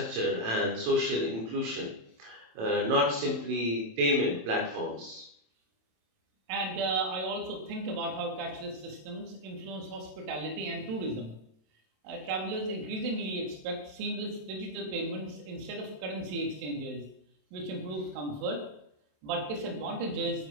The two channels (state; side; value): late; left; 27 ms